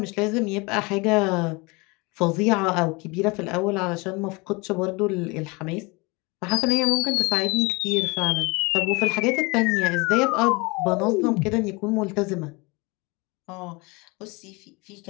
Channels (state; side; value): quieter; right; 26.6 dB